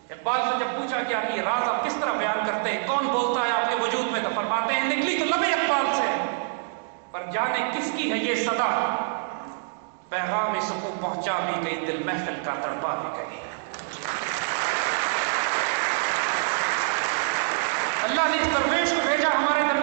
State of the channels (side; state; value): left; silent; digital silence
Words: اقبال سے جب پوچھا گیا کہ یہ راز آپ کس طرح بیان کرتے ہیں، کون بولتا ہے آپ کے وجود میں، تو فرماتے ہیں نکلی تو لب اقبال سے، پر جانے کس کی ہے یہ صدا، پیغام سکوں پہنچا بھی گئی، دل محفل کا تڑپا بھی گئی. اللہ نے اس درویش کو بھیجا ہمارے